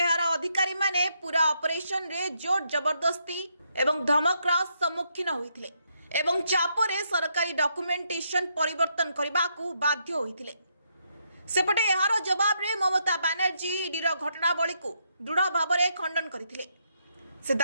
अधिकारी माने पूरा ऑपरेशन रे जोर जबरदस्ती एवं धमकर सम्मुखीन होइथिले एवं चापरे सरकारी डॉक्यूमेंटेशन परिवर्तन करबाकू बाध्य होइथिले। सेपटे एहार जवाब रे ममता बनर्जी ईडीर घटनावली को दृढ़ भाव में खंडन करथिले। से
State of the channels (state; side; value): inverted; both; correlation -0.77